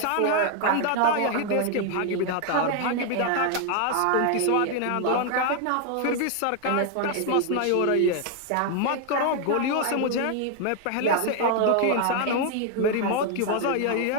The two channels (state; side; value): different; both; correlation 0.00